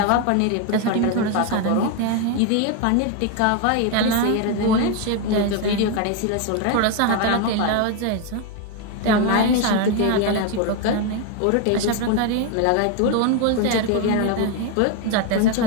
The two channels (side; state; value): both; different; correlation 0.01